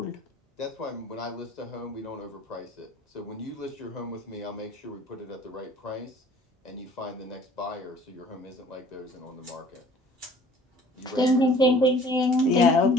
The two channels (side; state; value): both; normal; correlation 0.51